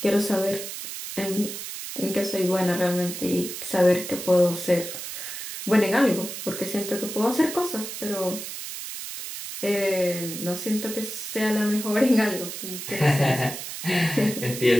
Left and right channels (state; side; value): noise; right; hiss, 8 dB below the sound